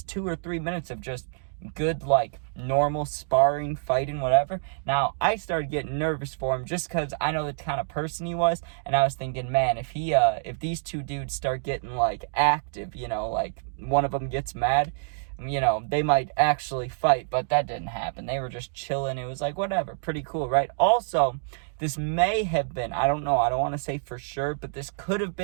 2 or 3 minutes of just good, like, normal sparring, fighting, whatever. Now, I started getting nervous for him just because I know the kind of person he was, and I was thinking, man, if these 2 dudes start getting, like, active, like, one of them gets mad, they might actually fight, but that didn't happen. They were just chilling. It was like, whatever, pretty cool, right? Also, this may have been, I don't know, I don't want to say for sure, but this could have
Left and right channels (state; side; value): silent; left; digital silence